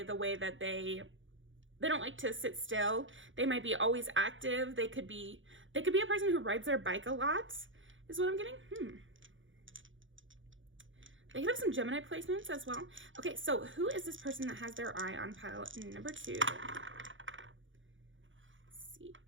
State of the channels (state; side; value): late; left; 0.56 ms